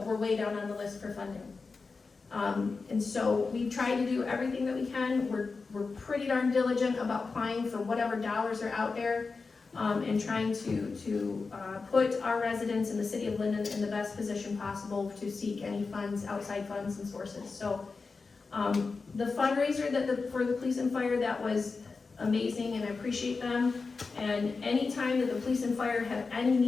we're way down on the list for funding. And so we try to do everything that we can. We're pretty darn diligent about applying for whatever dollars are out there, and trying to put our residents in the city of Linden in the best position possible to seek any funds, outside funds and sources. So the fundraiser for the police and fire, that was amazing, and I appreciate them. And anytime that the police and fire have any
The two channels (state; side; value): quieter; right; 4.4 dB